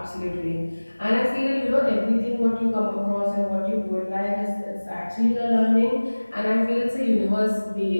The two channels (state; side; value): inverted; both; correlation -1.00